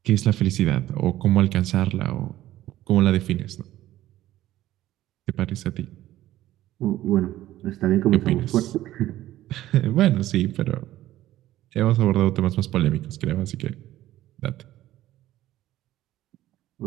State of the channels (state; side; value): quieter; left; 14.5 dB